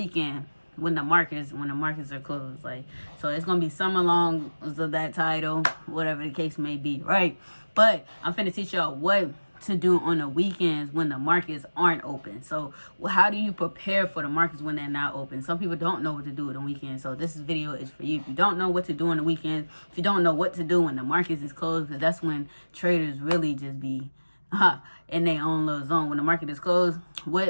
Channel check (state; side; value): inverted; both; correlation -1.00